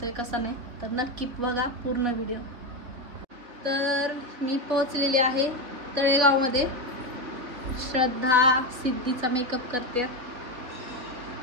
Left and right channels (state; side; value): late; left; 3.9 ms